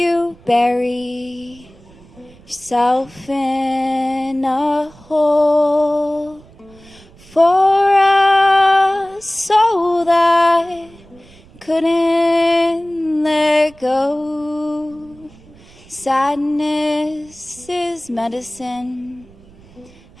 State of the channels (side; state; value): right; noise; rumble, 25 dB below the sound